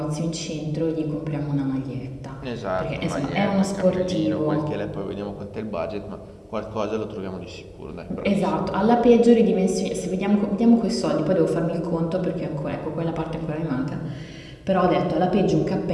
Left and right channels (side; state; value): both; identical; correlation 1.00